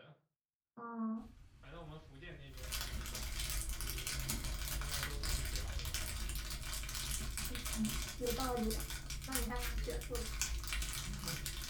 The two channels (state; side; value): identical; both; correlation 1.00